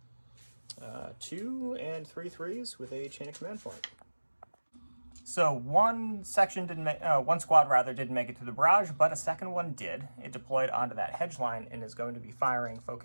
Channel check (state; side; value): inverted; both; correlation -1.00